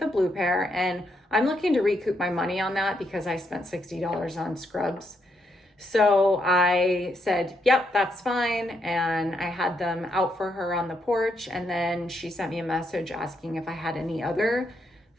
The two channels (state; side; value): normal; both; correlation 0.78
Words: blue pair, and I'm looking to recoup my money on that because I spent $60 on scrubs. So I said, yep, that's fine. And I had them out for her on the porch. And then she sent me a message asking if I had any other